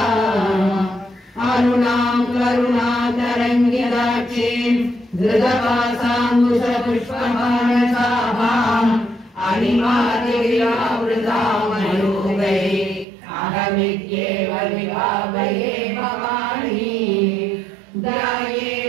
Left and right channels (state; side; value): drops out; left; at 13.1 s